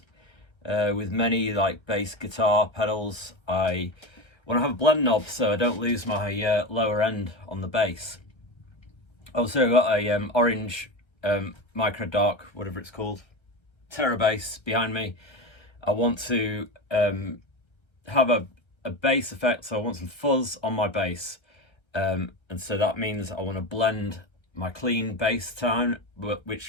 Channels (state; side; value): late; right; 1.3 ms